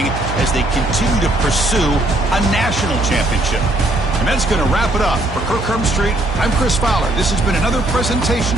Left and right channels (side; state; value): right; noise; hum, 7 dB below the sound